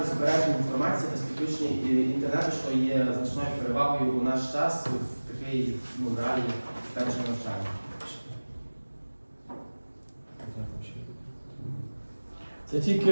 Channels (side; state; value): both; inverted; correlation -1.00